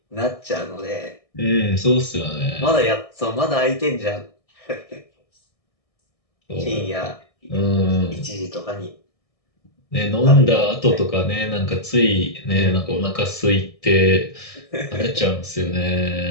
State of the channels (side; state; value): right; late; 1.6 ms